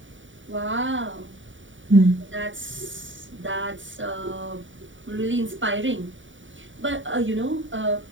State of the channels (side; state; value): left; late; 0.56 ms